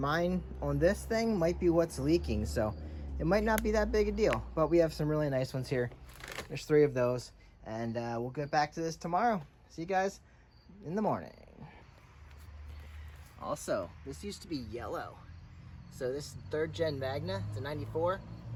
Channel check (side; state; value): both; identical; correlation 1.00